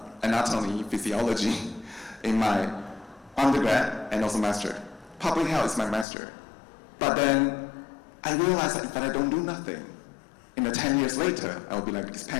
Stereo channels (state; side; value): drops out; right; at 6.1 s